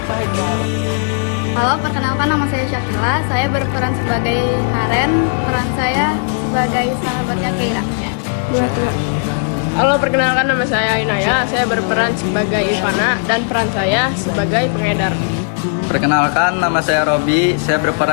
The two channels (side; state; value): right; silent; 69 dB below the other